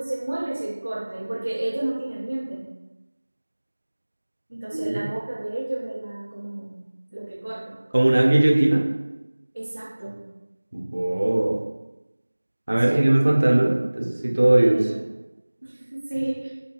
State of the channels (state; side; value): inverted; both; correlation -1.00